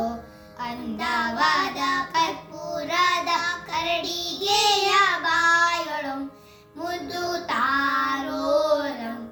ಅಂದವಾದ ಕರ್ಪೂರದ ಕರಡಿಗೆಯ ಬಾಯೊಳು ಮುದ್ದು ತಾರೋ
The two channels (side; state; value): both; identical; correlation 1.00